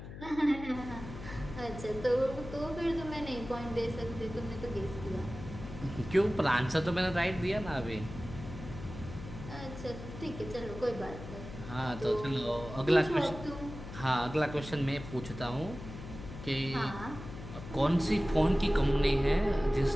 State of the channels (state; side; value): noise; left; hum, 11 dB below the sound